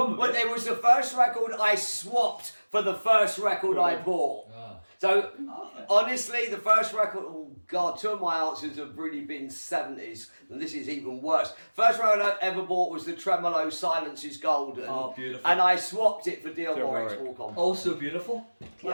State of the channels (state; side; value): inverted; both; correlation -1.00